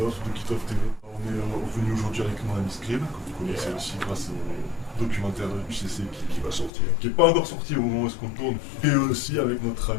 de Kitov TV. On est venu aujourd'hui avec mon ami Scrib, que vous connaissez aussi grâce au documentaire du CC qui va sortir. Qui n'est pas encore sorti au moment où est-ce qu'on tourne. Et aussi avec notre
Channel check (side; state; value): right; drops out; at 6.7 s